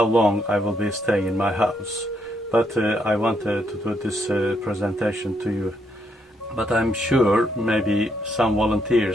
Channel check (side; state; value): both; normal; correlation 0.76